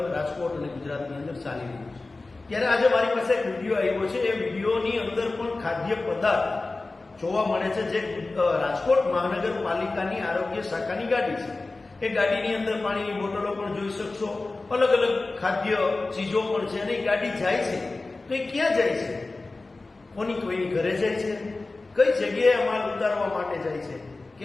રાજકોટ અને ગુજરાતની અંદર ચાલી રહ્યું છે. ત્યારે આજે મારી પાસે એક વિડીયો આવ્યો છે. એ વિડીયોની અંદર પણ ખાદ્ય પદાર્થ જોવા મળે છે જે રાજકોટ મહાનગરપાલિકાની આરોગ્ય શાખાની ગાડી છે. એ ગાડીની અંદર પાણીની બોટલો પણ જોઈ શકશો, અલગ અલગ ખાદ્ય ચીજો પણ છે અને એ ગાડી જાય છે તો એ ક્યાં જાય છે? કોઈની ઘરે જાય છે? કઈ જગ્યાએ માલ ઉતારવા માટે જાય છે?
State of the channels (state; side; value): quieter; right; 3.3 dB